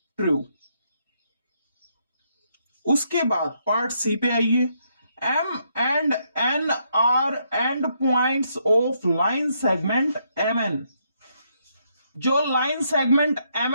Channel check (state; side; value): inverted; both; correlation -0.75